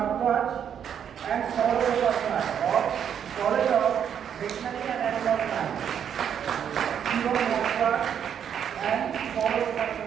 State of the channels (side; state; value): left; quieter; 8.6 dB